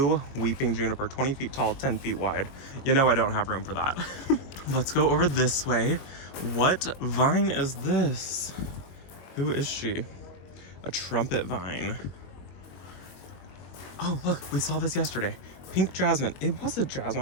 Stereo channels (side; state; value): right; late; 21 ms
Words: weeping juniper, 20 feet tall, 10 feet wide. You know I don't have room for that. Let's go over this way. What vine is this? Who is she? A trumpet vine. Oh, look, we saw this yesterday. Pink jasmine. It was a